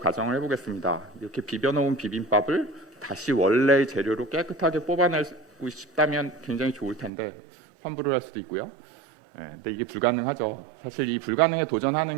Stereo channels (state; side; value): drops out; left; at 7.1 s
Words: 가정을 해보겠습니다. 이렇게 비벼놓은 비빔밥을 다시 원래의 재료로 깨끗하게 뽑아내고 싶다면 굉장히 좋을 텐데 환불을 할 수도 있고요. 근데 이게 불가능하죠. 사실 이 불가능에